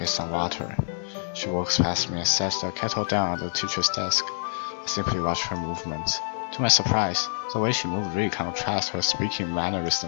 some water. She walks past me and sets the kettle down on the teacher's desk. I simply watch her movements. To my surprise, the way she moved really contrasts her speaking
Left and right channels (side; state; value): right; silent; digital silence